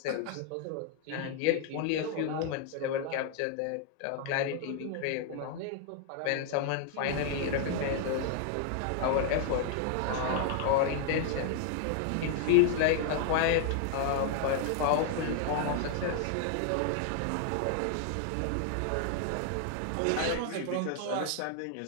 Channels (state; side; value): different; both; correlation 0.00